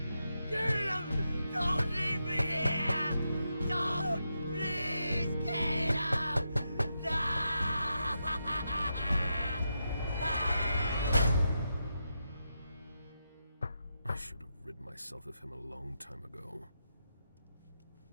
Caleb! Don't leave me here! Don't! Please, Caleb! No! I should have rid myself of him a long time ago.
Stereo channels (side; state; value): both; inverted; correlation -0.85